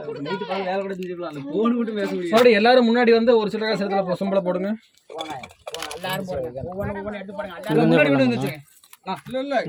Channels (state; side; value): identical; both; correlation 1.00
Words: நைட் பால் வேலை கூட செஞ்சுக்கலாம். அந்த போன் மட்டும் பேச முடியாது. சாரி எல்லாரும் முன்னாடி வந்து ஒரு சில காசத்துல சம்பளம் போடுங்க. எல்லாரும் போடுங்க. ஒவ்வொரு எடுத்து போடுங்க. முன்னாடி கொண்டு வந்துச்சு. இல்ல